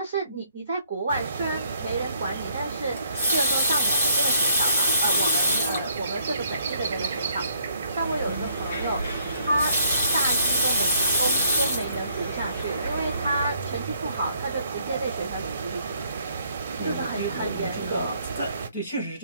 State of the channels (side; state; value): both; inverted; correlation -0.67